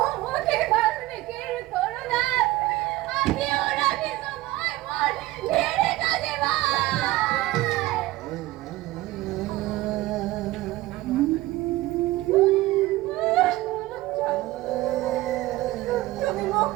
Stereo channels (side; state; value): left; quieter; 17.9 dB